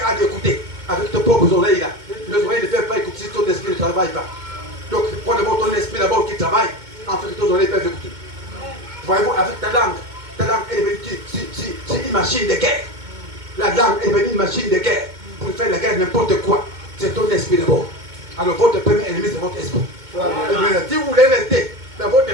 d'écouter avec tes propres oreilles là. Les oreilles ne peuvent pas écouter si ton esprit ne travaille pas. Donc, prends d'abord ton esprit d'abord qui travaille, en fait, tes oreilles peuvent écouter. Voyez-vous, avec ta langue est devenue une machine de guerre. La langue est devenue une machine de guerre. Pour faire la guerre n'importe quoi, c'est ton esprit d'abord. Alors, votre premier ennemi, c'est votre esprit. Si vous voulez rester dans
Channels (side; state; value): left; late; 2.2 ms